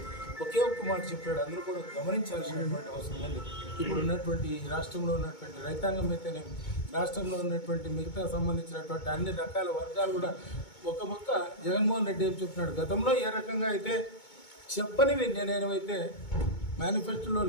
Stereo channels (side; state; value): right; late; 2.2 ms